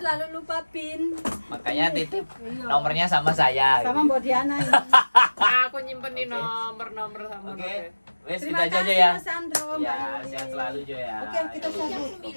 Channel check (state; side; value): inverted; both; correlation -1.00